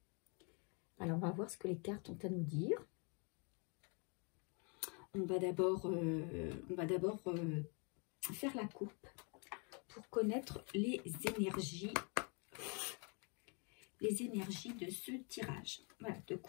Alors, on va voir ce que les cartes ont à nous dire. On va d'abord faire la coupe pour connaître les énergies de ce tirage. Voilà, de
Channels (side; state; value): right; quieter; 35.3 dB